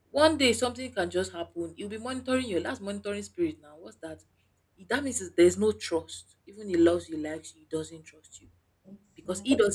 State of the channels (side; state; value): both; identical; correlation 1.00